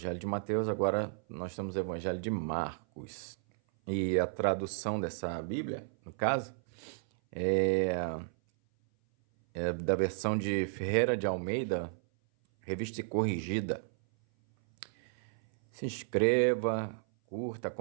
de Mateus, agora nós estamos no Evangelho de Marcos. E a tradução dessa Bíblia, no caso, é da versão de Ferreira de Almeida, revista e corrigida. Se inscreva, curta,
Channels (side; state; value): left; silent; 56 dB below the other